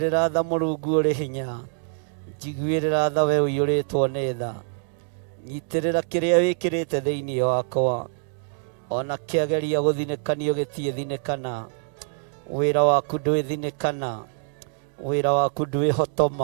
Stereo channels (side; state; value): left; silent; digital silence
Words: tha Mũrungu ũrĩ hinya, njiguĩrĩra tha we ũiyũrĩtwo nĩ tha. Nyitĩrĩra kĩrĩa wĩkĩrĩte thĩinĩ wakwa, ona kĩageria gũthinĩkanio gĩtiĩthinĩkana. Wĩra waku ndwĩthinĩkana, wĩra waku